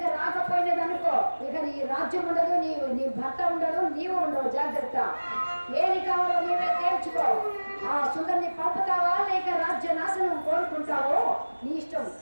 రాకపోయినదనుకో, ఇక నీ రాజ్యం ఉండదు, నీ భర్త ఉండదు, నీవు ఉండవు. జాగ్రత్త, ఏది కావాలో నీవే తేల్చుకో. ఆ సుందరిని పంపుతావా లేక రాజ్య నాశనం కోరుకుంటావో నీ ఇష్టం,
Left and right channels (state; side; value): inverted; both; correlation -1.00